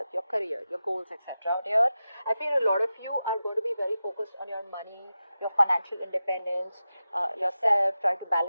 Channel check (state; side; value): inverted; both; correlation -0.92